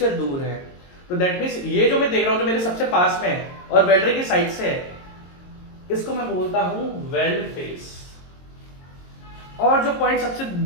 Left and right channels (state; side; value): late; right; 22 ms